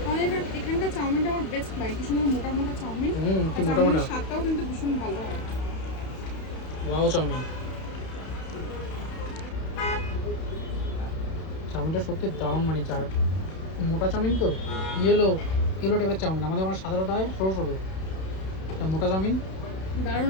এখানকার চাউমিনটা আমার বেস্ট লাগে, কি সুন্দর মোটা মোটা চাউমিন। কি মোটা মোটা, স্বাদটাও কিন্তু ভীষণ ভালো হয়। ওয়াও চাউমিন, চাউমিনটা সত্যি দারুণ, মানে মোটা চাউমিন তো ইয়েলো টাইপের চাউমিন। আমাদের ওখানে সাধারণত হয় সরু সরু, মোটা চাউমিন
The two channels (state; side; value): late; right; 31 ms